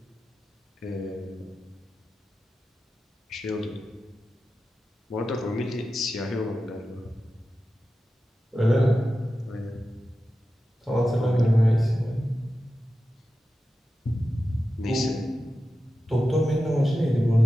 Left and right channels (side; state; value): both; normal; correlation 0.92